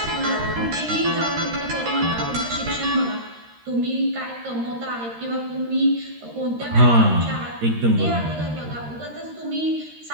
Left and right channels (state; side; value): late; left; 13 ms